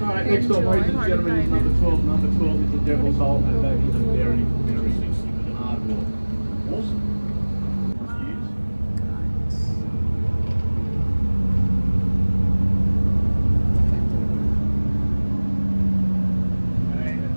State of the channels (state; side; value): inverted; both; correlation -1.00